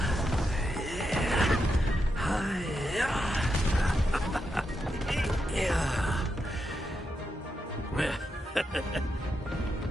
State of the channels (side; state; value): both; normal; correlation 0.85